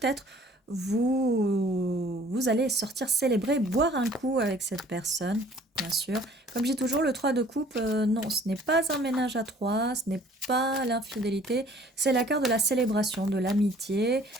vous allez sortir célébrer, boire un coup avec cette personne, bien sûr. Comme je dis toujours, le 3 de coupe, non, ce n'est pas un ménage à 3, ce n'est pas l'infidélité, c'est la carte de la célébration, de l'amitié.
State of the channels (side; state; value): both; normal; correlation 0.54